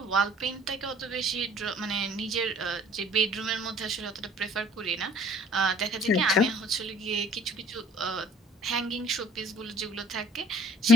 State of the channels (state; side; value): normal; both; correlation 0.54